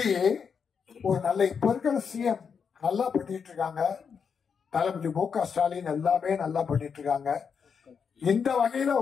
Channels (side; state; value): right; quieter; 6.4 dB